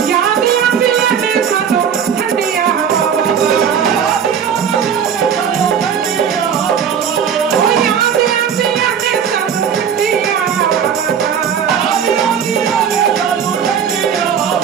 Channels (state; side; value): quieter; left; 7.8 dB